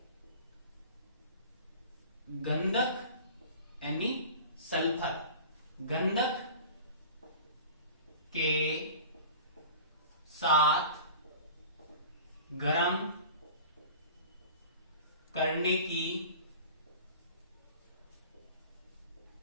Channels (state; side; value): inverted; both; correlation -0.40